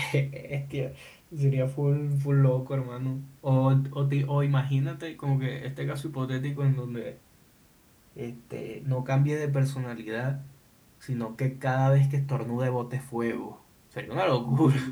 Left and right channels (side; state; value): both; identical; correlation 1.00